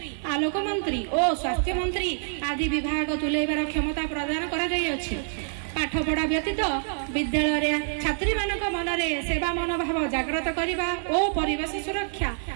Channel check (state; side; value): silent; left; 61 dB below the other